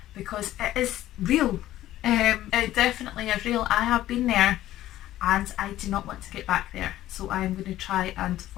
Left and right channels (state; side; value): quieter; right; 14.0 dB